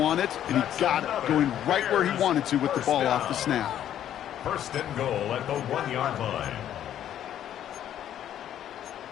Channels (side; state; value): right; quieter; 10.8 dB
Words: and he got it, going right where he wanted to with the ball off the snap. First and goal at the 1-yard line.